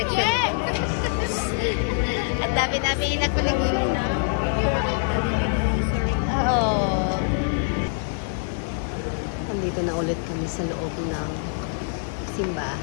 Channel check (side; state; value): right; silent; 56 dB below the other